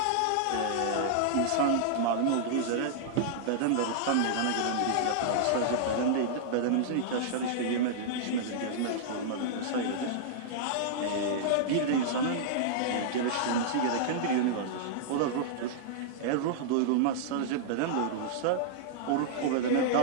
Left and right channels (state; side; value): different; both; correlation -0.02